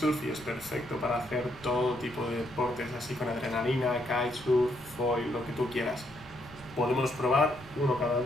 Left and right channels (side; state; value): left; noise; rumble, 22 dB below the sound